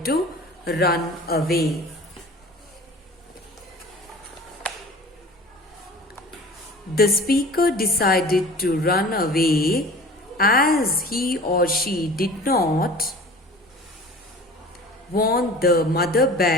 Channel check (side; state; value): both; normal; correlation 0.42